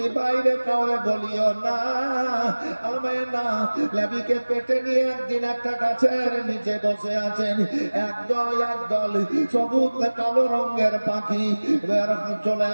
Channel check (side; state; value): both; inverted; correlation -1.00